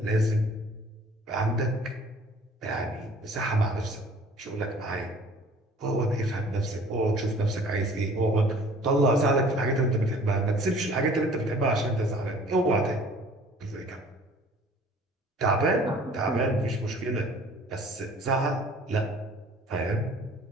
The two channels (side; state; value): both; normal; correlation 0.51